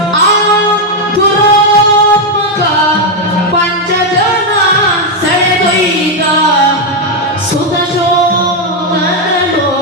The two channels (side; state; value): both; normal; correlation 0.02